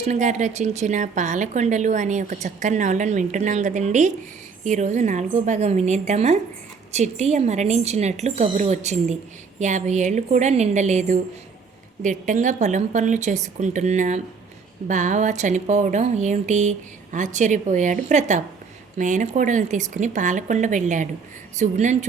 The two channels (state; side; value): quieter; left; 5.3 dB